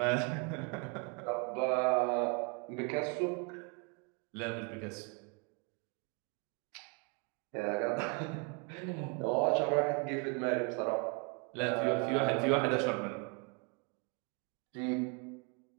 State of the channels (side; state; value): left; quieter; 33.6 dB